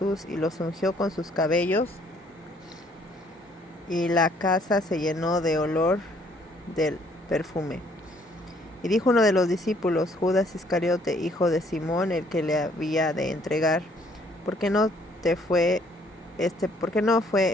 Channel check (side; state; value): both; normal; correlation 0.63